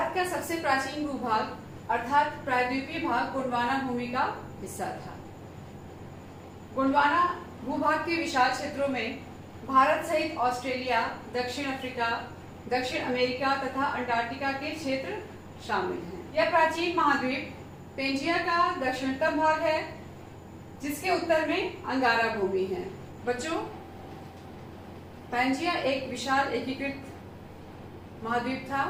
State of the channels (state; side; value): identical; both; correlation 1.00